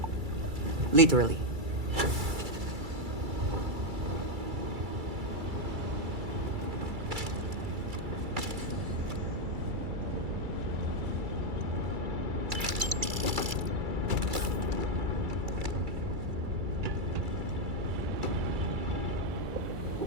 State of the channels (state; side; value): late; left; 2.3 ms